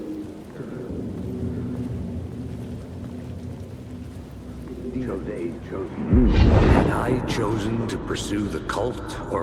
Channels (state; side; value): identical; both; correlation 1.00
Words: Had I chosen to pursue the cult,